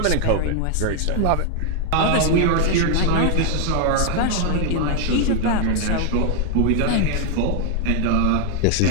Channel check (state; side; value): different; both; correlation 0.00